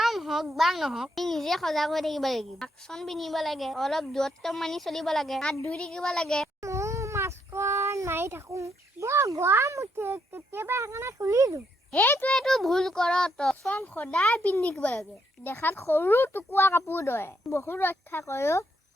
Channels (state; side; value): normal; both; correlation 0.76